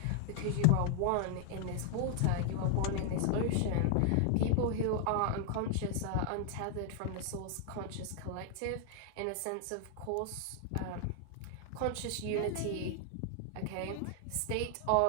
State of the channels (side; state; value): both; different; correlation 0.00